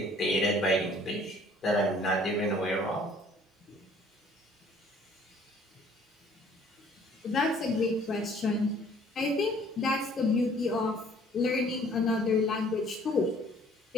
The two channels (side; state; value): both; normal; correlation 0.57